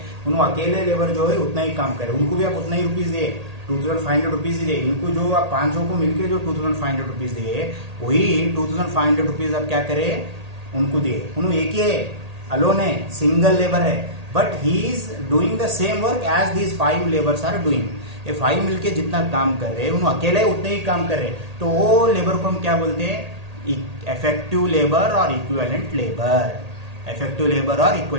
उन्होंने अकेले लेबर जो है उतना ही काम करे, उनको भी आप उतना ही रुपीज दे, 2500 रुपीज दिए. इनको जो आप 500 को मिलके जो 2500 रुपीज दिए, वही 2500 रुपीज आप क्या करे उनको दिए. उन्होंने एक ही है, अलोन है, सिंगल लेबर है, but he is doing the same work as these 5 labours are doing. ये 5 मिलके जितना काम कर रहे हैं, उन्होंने अकेले उतने ही काम कर रहे हैं, तो वो लेबर को हम क्या बोलते हैं इफेक्टिव लेबर और इक्विवेलेंट लेबर. इफेक्टिव लेबर और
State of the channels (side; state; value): left; late; 1.8 ms